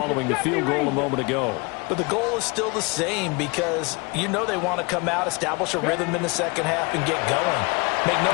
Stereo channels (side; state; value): right; quieter; 28.2 dB